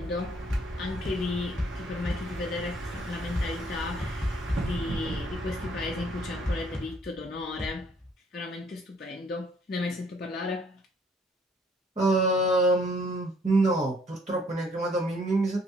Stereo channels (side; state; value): both; normal; correlation 0.64